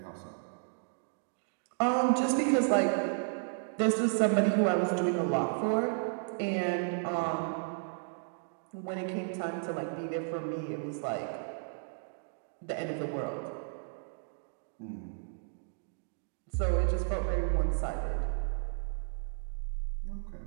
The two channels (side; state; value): left; silent; digital silence